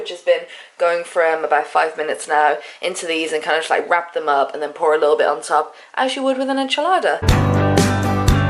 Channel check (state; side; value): identical; both; correlation 1.00